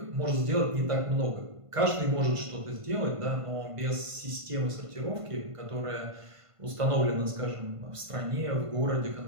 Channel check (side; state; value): left; late; 1.5 ms